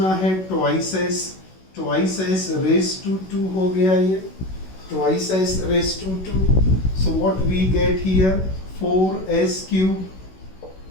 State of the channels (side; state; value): right; late; 16 ms